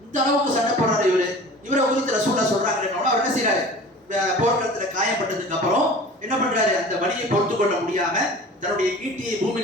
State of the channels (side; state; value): both; normal; correlation 0.41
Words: இந்த அளவுக்கு சண்டை போடுறாரு இவரை குறித்து ரசூலுல்லாஹ் சொல்றாங்க. அவர் என்ன செய்யறாரு, போர்க்களத்துல காயப்பட்டதுக்கு அப்புறம் என்ன பண்றாரு, அந்த வலியை பொறுத்து கொள்ள முடியாம தன்னுடைய ஈட்டியை